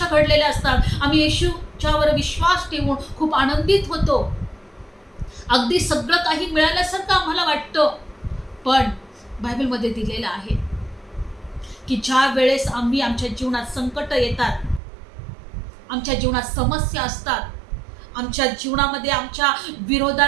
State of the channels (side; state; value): left; drops out; at 14.8 s